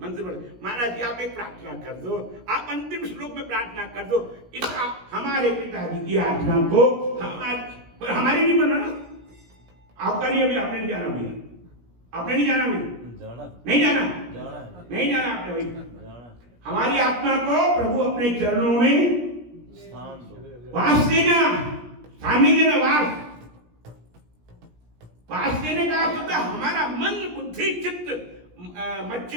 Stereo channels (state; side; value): late; left; 17 ms